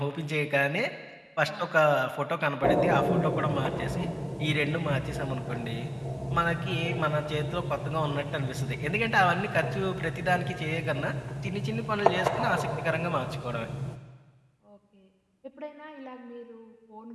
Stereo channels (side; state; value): both; identical; correlation 1.00